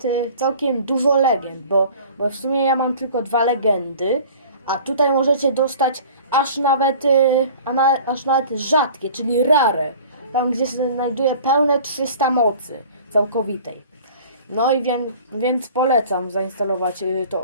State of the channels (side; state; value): both; inverted; correlation -0.46